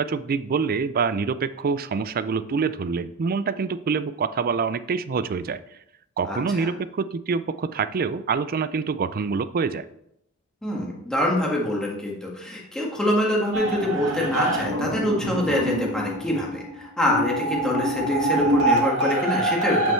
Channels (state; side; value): normal; both; correlation 0.31